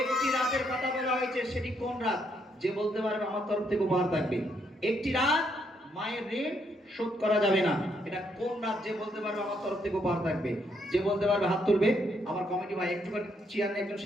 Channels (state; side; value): normal; both; correlation 0.74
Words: রাতের কথা বলা হয়েছে, সেটি কোন রাত? যে বলতে পারবে আমার তরফ থেকে উপহার থাকবে। একটি রাত মায়ের ঋণ শোধ করা যাবে না, এটা কোন রাত? যে বলতে পারবে আমার তরফ থেকে উপহার থাকবে। যে বলতে পারবে হাত তুলবে। আমার কমিটি ভাই একটুখানি চেয়ার নিয়ে একজন